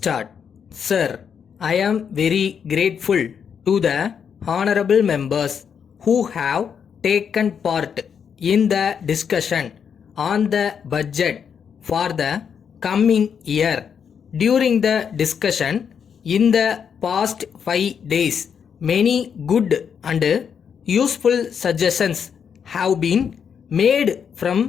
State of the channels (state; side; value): quieter; right; 7.3 dB